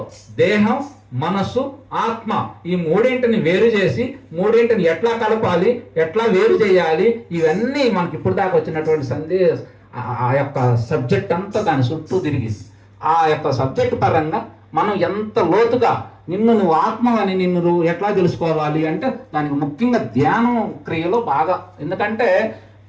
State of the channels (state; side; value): identical; both; correlation 1.00